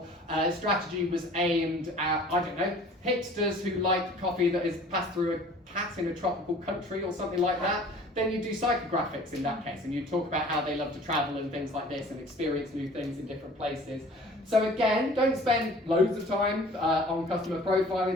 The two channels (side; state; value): both; normal; correlation 0.48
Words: strategy was aimed at, I don't know, hipsters who like coffee that is passed through a cat in a tropical country or something like that, then you do psychographics in that case, and you talk about how they love to travel and things like this and experience new things in different places. So again, don't spend loads of time on customer